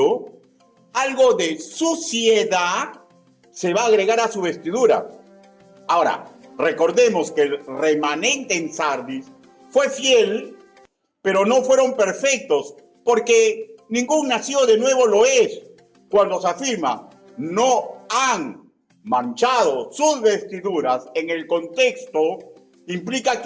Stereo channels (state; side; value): identical; both; correlation 1.00